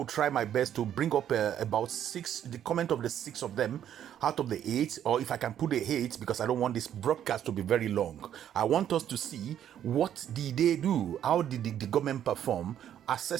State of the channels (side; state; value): left; quieter; 10.3 dB